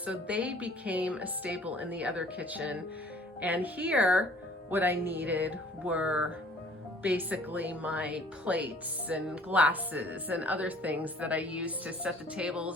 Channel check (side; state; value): both; normal; correlation 0.53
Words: they became a staple in the other kitchen. And here, what I needed were basically my plates and glasses and other things that I used to set the